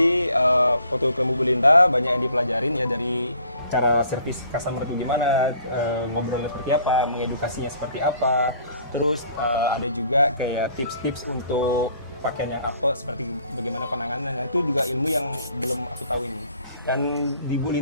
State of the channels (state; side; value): inverted; both; correlation -0.58